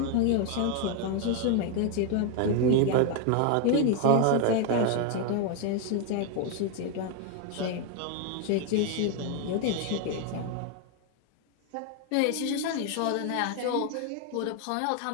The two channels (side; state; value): both; different; correlation 0.01